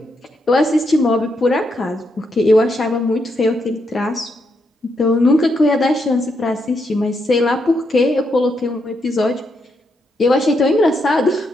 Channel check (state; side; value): normal; both; correlation 0.80